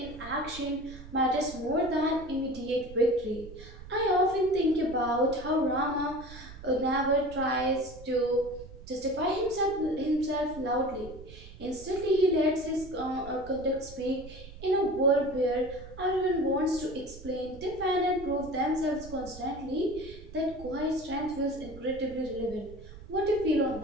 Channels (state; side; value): noise; right; rumble, 16 dB below the sound